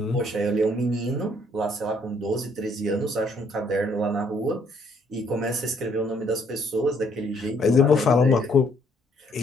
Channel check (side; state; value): both; normal; correlation 0.67